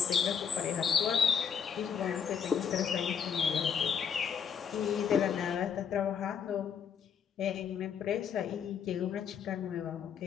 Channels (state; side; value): quieter; right; 7.4 dB